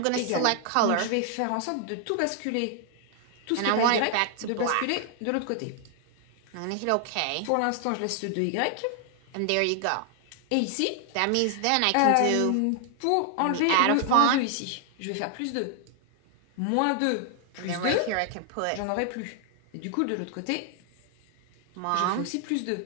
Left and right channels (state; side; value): different; both; correlation 0.00